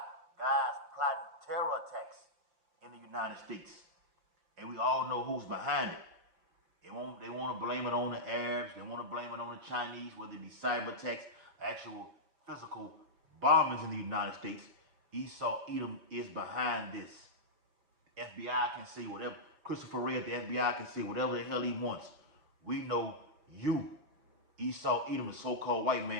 guys plotting terror attacks in the United States. And we all know who's behind it. They want to blame it on the Arabs. They want to blame it on the Chinese, whether it be cyber attacks, actual physical bombings in the United States. Esau Edom is behind this. The FBI can say whatever. Christopher Wray at the FBI can say whatever the hell he wants. We know you, Esau Edom, the so-called white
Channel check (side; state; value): left; late; 6.2 ms